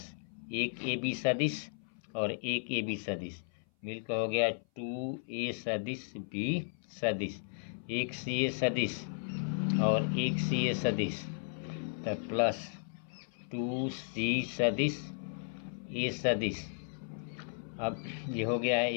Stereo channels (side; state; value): right; silent; 55 dB below the other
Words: एक ए बी सदिश और एक ए बी सदिश मिलकर हो गया 2 ए सदिश बी सदिश, एक सी ए सदिश और एक सी ए सदिश, तो प्लस 2 सी सदिश ए सदिश। अब ये हो गया है,